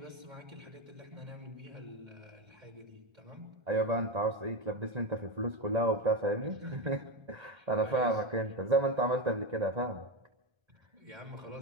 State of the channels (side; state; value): left; late; 1.3 ms